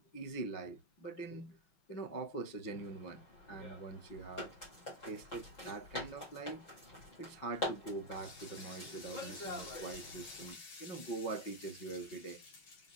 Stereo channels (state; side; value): late; right; 6.0 ms